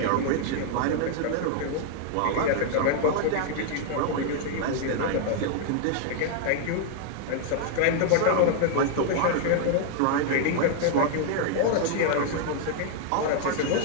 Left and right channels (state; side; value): different; both; correlation 0.00